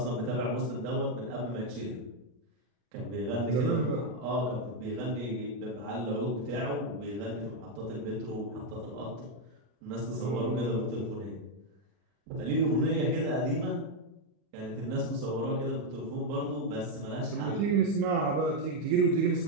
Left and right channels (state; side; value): late; left; 40 ms